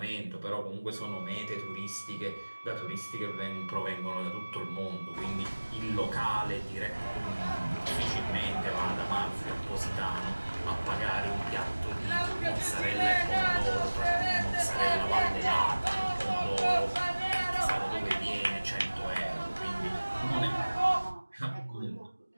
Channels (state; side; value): inverted; both; correlation -1.00